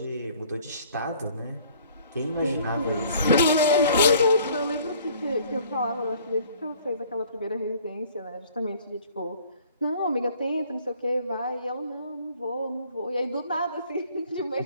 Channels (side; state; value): both; inverted; correlation -0.55